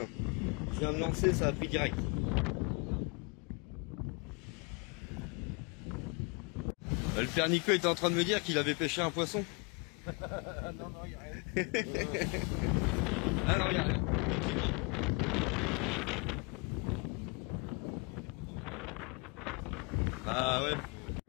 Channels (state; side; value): quieter; right; 31.4 dB